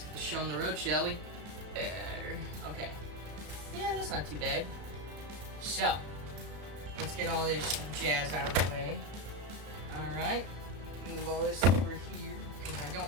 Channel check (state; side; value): late; left; 33 ms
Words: get the show on the road, shall we? Okay, yeah, that's not too bad. So, let's get all this jazz out of the way. Alright, move all this over here, because I